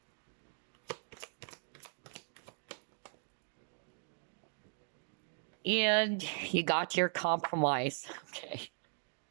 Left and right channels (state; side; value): silent; left; digital silence